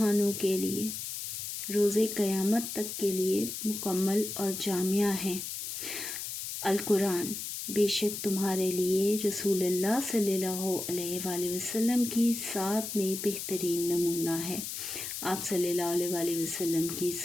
کے لیے، روز قیامت تک کے لیے مکمل اور جامع ہیں۔ القرآن بے شک تمہارے لیے رسول اللہ صلی اللہ علیہ وآلہ وسلم کی ذات میں بہترین نمونہ ہے۔ آپ صلی اللہ علیہ وآلہ وسلم کی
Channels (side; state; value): left; noise; hiss, 6 dB below the sound